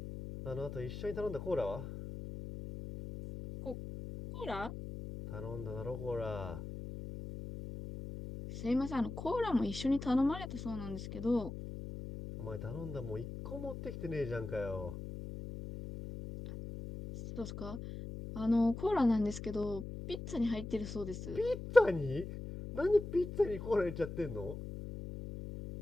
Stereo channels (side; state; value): left; noise; hum, 8 dB below the sound